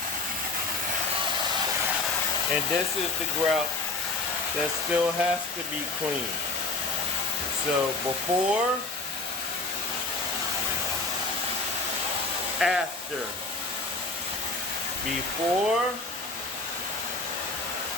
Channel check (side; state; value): right; quieter; 3.6 dB